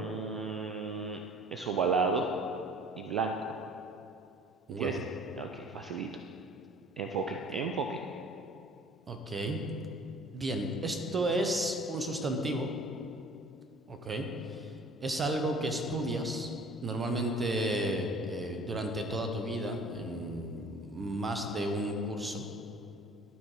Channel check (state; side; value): normal; both; correlation 0.49